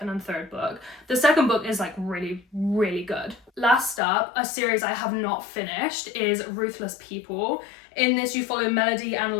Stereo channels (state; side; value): drops out; right; at 4.0 s